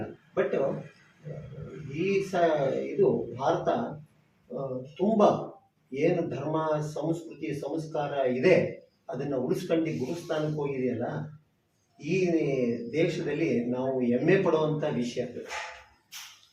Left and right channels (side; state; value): both; identical; correlation 1.00